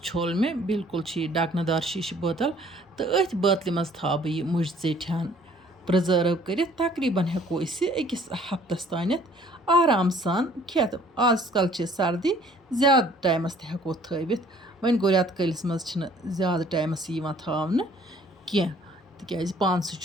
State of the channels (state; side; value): normal; both; correlation 0.57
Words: छोल मे बिल्कुल डकनदार शीशु बोतल तो अथ बोतल मज था बह यह मुझ ज़ेठान प्रिजर्व कर तकरीबन हेको अकिस हफ्तस तान आराम सान खेत आजकल सर्दी ज्यादा टाइमस हेको थवित वन गो रेत कलिस मज ज्यादा टाइमस थावन कह तिकाज पान